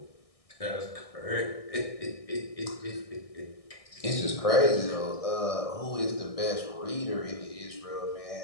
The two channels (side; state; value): right; late; 1.6 ms